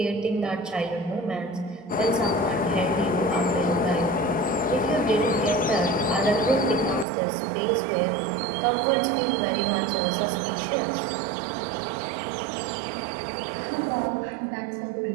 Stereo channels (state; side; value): drops out; left; at 7.1 s